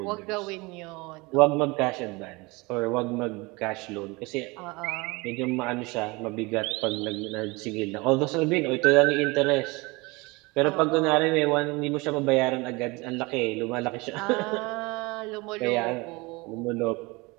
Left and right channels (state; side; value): quieter; left; 24.8 dB